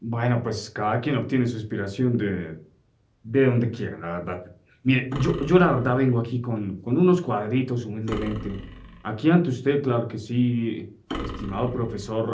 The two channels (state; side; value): identical; both; correlation 1.00